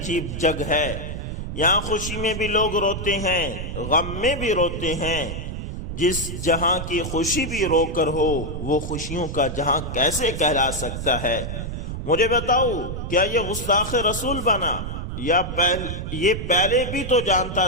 جگ ہے، یہاں خوشی میں بھی لوگ روتے ہیں، غم میں بھی روتے ہیں۔ جس جہاں کی خوشی بھی رو کر ہو وہ خوشیوں کا جہاں کیسے کہلا سکتا ہے؟ مجھے بتاؤ، کیا یہ گستاخ رسول بنا یا یہ پہلے بھی تو جانتا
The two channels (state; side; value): noise; right; rumble, 6 dB below the sound